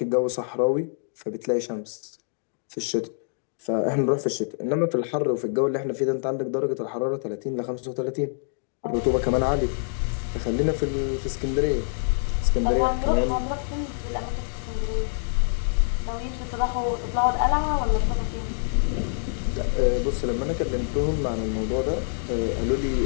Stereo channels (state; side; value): silent; right; digital silence